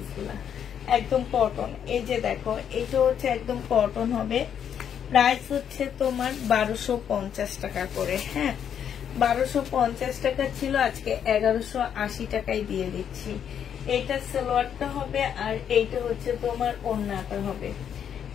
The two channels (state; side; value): quieter; right; 8.6 dB